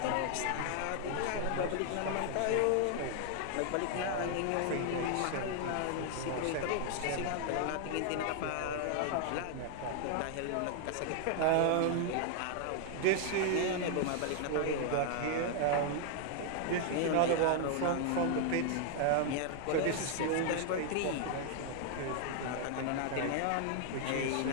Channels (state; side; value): different; both; correlation 0.00